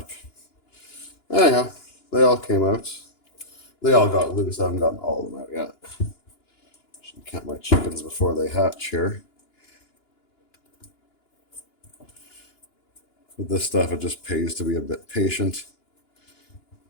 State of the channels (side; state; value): right; late; 2.9 ms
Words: Anyhow, they all came out. They all got loose. I haven't gotten all of them out yet. Should count my chickens before they hatch here. With this stuff, it just pays to be a bit patient.